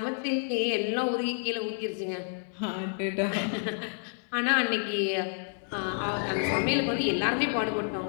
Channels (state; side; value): silent; right; digital silence